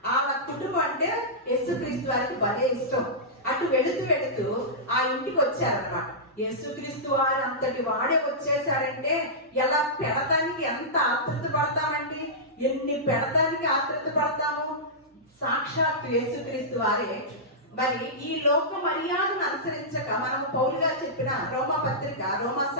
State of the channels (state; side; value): normal; both; correlation -0.14